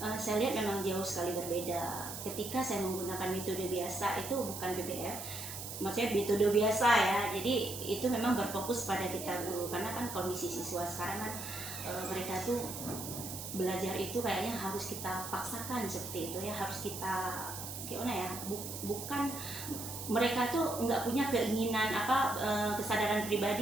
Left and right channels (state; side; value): noise; right; hiss, 8 dB below the sound